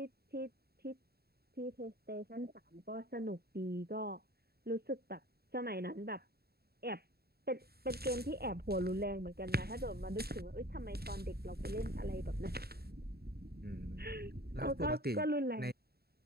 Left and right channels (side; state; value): left; late; 0.46 ms